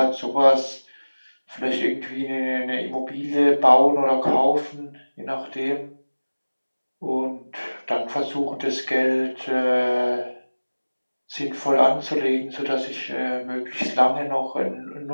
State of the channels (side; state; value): both; inverted; correlation -1.00